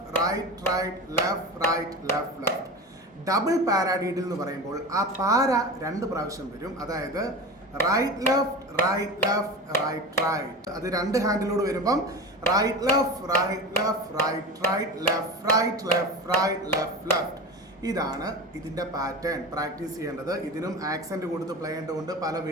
right right left right left left. Double paradiddle എന്ന് പറയുമ്പോൾ ആ പാര 2 പ്രാവശ്യം വരും. അതായത് right left right left right right. അത് 2 ഹാൻഡിലൂടെ വരുമ്പം right left right left right right left right left right left left. ഇതാണ് ഇതിൻ്റെ പാറ്റേൺ. പ്രാക്ടീസ് ചെയ്യേണ്ടത്. ഇതിനും ആക്സെൻറ്റ് കൊടുത്ത് പ്ലേ ചെയ്യേണ്ടതുണ്ട്. പല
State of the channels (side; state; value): both; normal; correlation 0.27